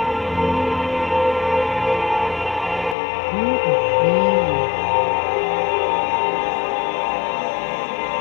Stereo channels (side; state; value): right; drops out; at 3.0 s